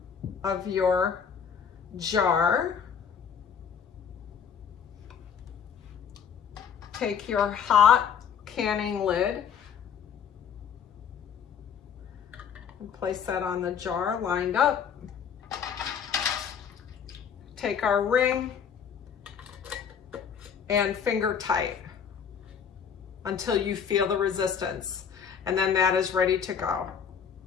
of your jar. Take your hot canning lid and place that on the jar lined up. Take our ring and finger tight until you feel the resistance, and then that is ready to go.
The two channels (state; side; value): quieter; right; 7.4 dB